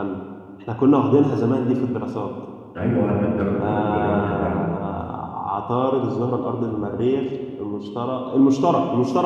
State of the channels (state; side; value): identical; both; correlation 1.00